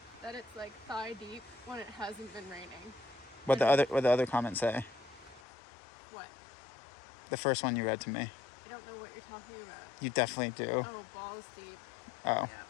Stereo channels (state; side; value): drops out; right; at 5.4 s